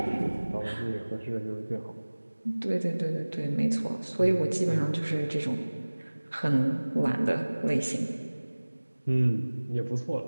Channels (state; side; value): inverted; both; correlation -1.00